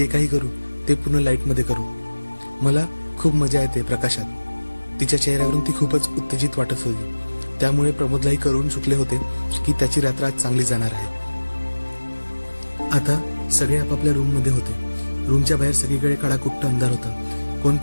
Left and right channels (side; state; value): both; inverted; correlation -1.00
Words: काही करू ते पूर्ण लाईटमध्ये करू. मला खूप मजा येते प्रकाशात. तिच्या चेहऱ्यावरून ती खूपच उत्तेजित वाटत होती. त्यामुळे प्रमोदलाही करून चुकले होते की त्याची रात्र आज चांगली जाणार आहे. आता सगळे आपापल्या रूम मध्ये होते. रूमच्या बाहेर सगळीकडे काळाकुट्ट अंधार होता. कोण